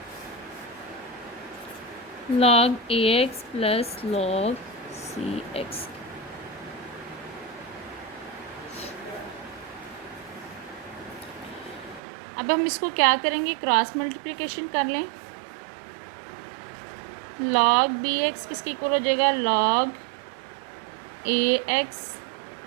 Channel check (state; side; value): drops out; left; at 12.0 s